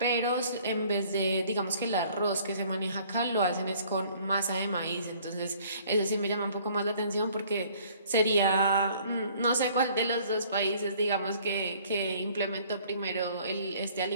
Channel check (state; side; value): inverted; both; correlation -0.56